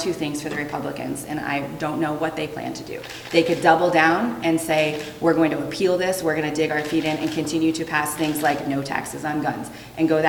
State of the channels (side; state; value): both; identical; correlation 1.00